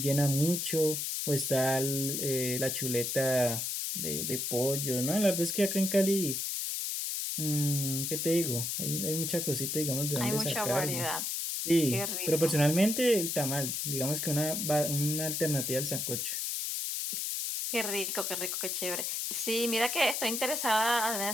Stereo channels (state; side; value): noise; left; hiss, 1 dB below the sound